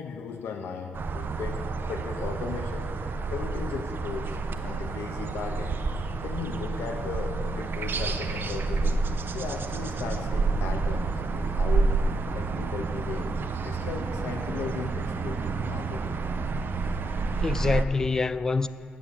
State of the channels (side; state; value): both; normal; correlation 0.78